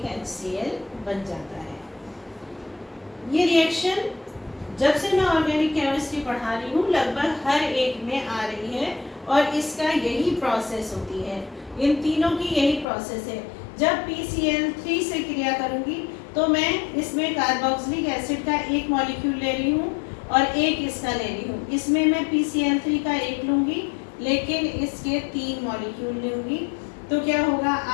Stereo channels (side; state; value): right; drops out; at 12.9 s